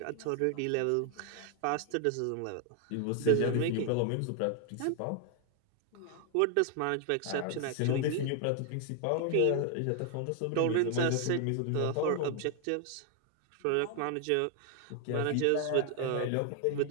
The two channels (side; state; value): both; different; correlation 0.00